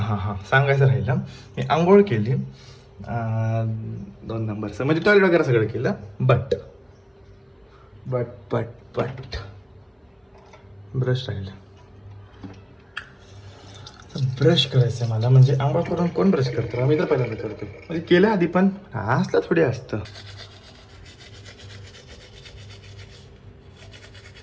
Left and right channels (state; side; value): identical; both; correlation 1.00